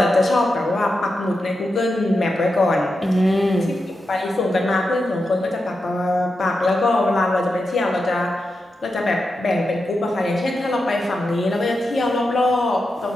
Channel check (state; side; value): normal; both; correlation 0.88